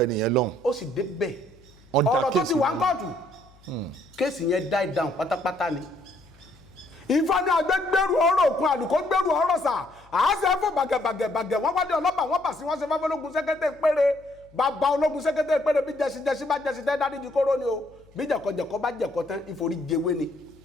ẹnìyẹn lọ́hùn. ó sì dé bẹ́ẹ̀ ọ̀rọ̀ tó ti wà ń kóòtù kéèsì yẹn die down pátápátá ni. Ifá ní agbẹ́gbẹ́rù ọ̀rọ̀ òkun àlùkò gbẹ́rù ọ̀rọ̀ sà àásẹ̀ fún bàgẹ̀bàgẹ̀ wọ́n wá dé ọlọ́pàá wọ́n bà sí wọ́n ṣe fáfẹ́ ológun sẹ́kẹ́tẹ̀ péré bàbá ológun sẹ́kẹ́tẹ̀ péré bí jẹ́sí bá jẹ́sí tẹ́ dáríjì kóró ni o bí jẹ̀kọ̀jẹ̀kọ̀ bá jẹ̀kọ̀ tán ìforí jẹwé ni.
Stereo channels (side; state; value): left; noise; hum, 28 dB below the sound